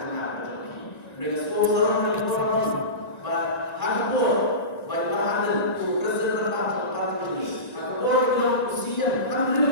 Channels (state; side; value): late; right; 1.9 ms